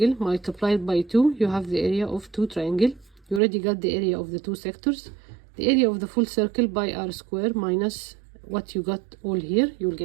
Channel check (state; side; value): drops out; left; at 3.4 s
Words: multiplied by 2. You have the area of 2 triangle. You already got the area of the 2 sectors. The area of the full circle by r square minus what you got all here, you will